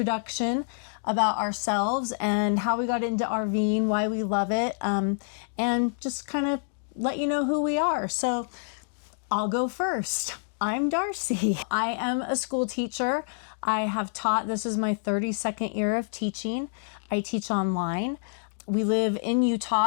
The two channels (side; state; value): right; silent; digital silence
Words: about ourselves and how we got into RVing, why we love it, and just kind of let you know who we are. So I'll go first. I'm Darcy. I am a school teacher. I have taught, this is my 32nd year of teaching. I teach online. We live in